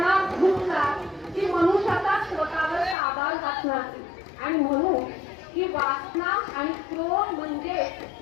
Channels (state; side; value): drops out; right; at 3.0 s